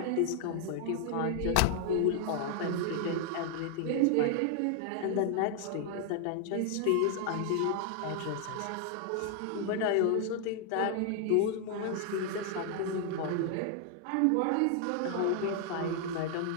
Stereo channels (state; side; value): different; both; correlation 0.00